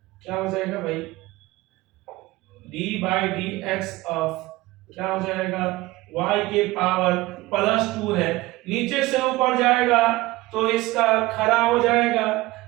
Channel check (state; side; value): quieter; left; 19.5 dB